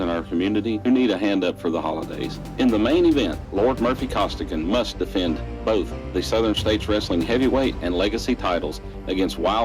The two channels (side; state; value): both; identical; correlation 1.00